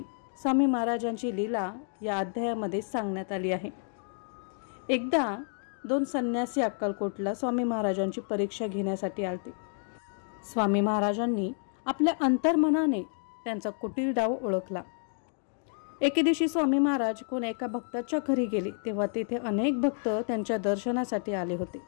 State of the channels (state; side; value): silent; right; 58 dB below the other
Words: स्वामी महाराजांची लीला या अध्यायामध्ये सांगण्यात आली आहे। एकदा 2 संन्यासी अक्कलकोटला स्वामी महाराजांची परीक्षा घेण्यासाठी आलते। स्वामी महाराजांनी आपल्या अंतर्मनाने त्यांचा कुटील डाव ओळखला। एके दिवशी स्वामी महाराज कोण एका भक्ताच्या घरी गेले तेव्हा तेथे अनेक भक्त त्यांच्या दर्शनासाठी आले होते